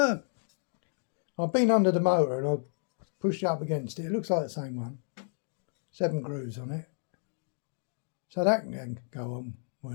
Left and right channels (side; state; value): right; silent; 57 dB below the other